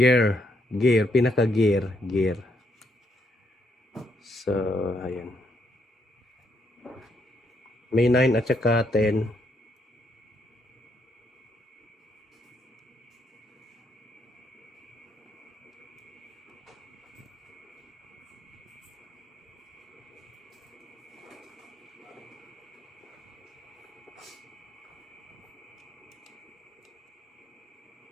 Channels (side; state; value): both; normal; correlation 0.75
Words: Pinaka-gear. Gear. So, ayan. May 9 at saka 10.